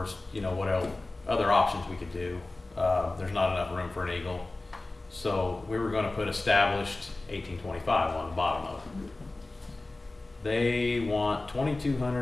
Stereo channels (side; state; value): right; quieter; 3.0 dB